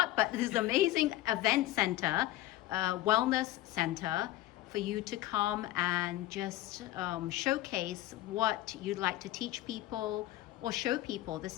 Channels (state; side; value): quieter; right; 15.8 dB